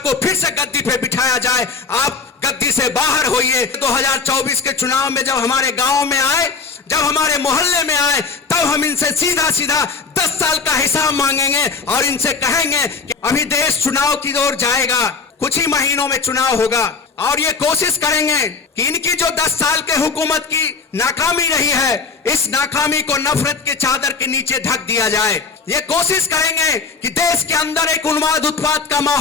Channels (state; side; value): quieter; right; 4.7 dB